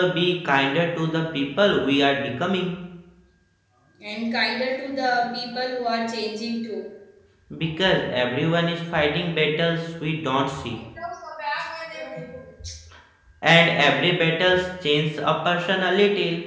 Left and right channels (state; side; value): identical; both; correlation 1.00